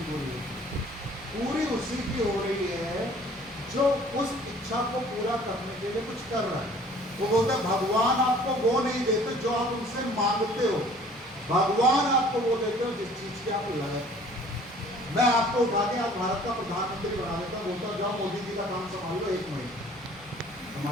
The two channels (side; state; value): both; normal; correlation 0.52